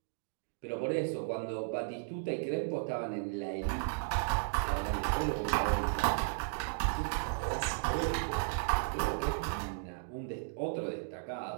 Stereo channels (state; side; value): silent; left; digital silence